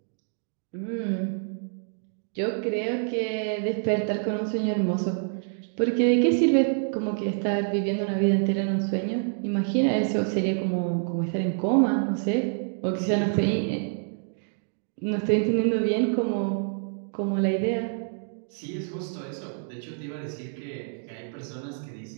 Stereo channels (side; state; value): left; silent; digital silence